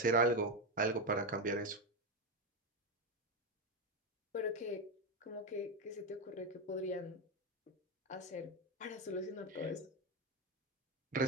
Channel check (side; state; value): both; normal; correlation 0.10